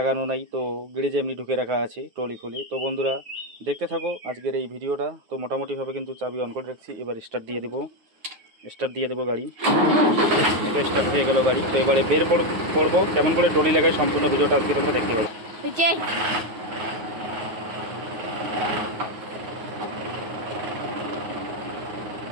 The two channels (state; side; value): late; left; 9.4 ms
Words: নাই, তো গ্যারেজে এমনি ঢুকে রাখা আছে ট্রলি খুলে। তো বন্ধুরা দেখতে থাকো আজকের এই ভিডিওটা। তো মোটামুটিভাবে কিন্তু চাবি অন করে রাখছি, এবার স্টার্ট দিয়ে দেবো গাড়ি। এটা স্টার্ট হয়ে গেল গাড়ি। তো এবারে বের পড়বো কেমন করে ট্রলি লাগায়, সম্পূর্ণ ভিডিওটা আজকে তোমরা দেখতে পাবে।